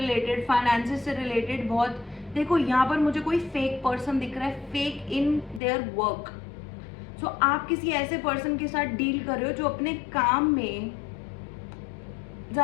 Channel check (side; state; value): right; drops out; at 5.6 s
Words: फाइनेंसेस से रिलेटेड बहुत, देखो यहाँ पर मुझे कोई फेक पर्सन दिख रहा है, फेक इन देयर वर्क। सो आप किसी ऐसे पर्सन के साथ डील कर रहे हो जो अपने काम में